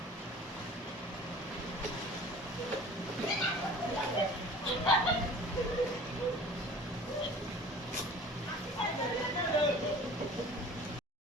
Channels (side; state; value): both; normal; correlation 0.44